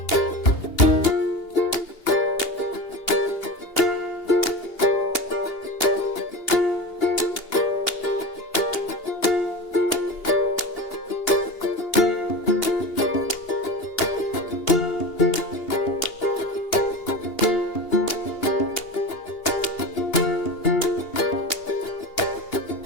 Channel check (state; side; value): late; right; 2.8 ms